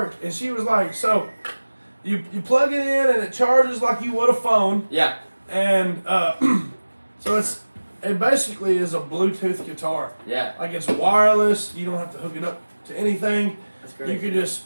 And she was like, so you plug it in and it charges like you would a phone. Yeah. And so it's it basically is a Bluetooth guitar. Yeah, Like it's wireless. You don't have to hook it up to anything. that's great. You could just,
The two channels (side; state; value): both; inverted; correlation -1.00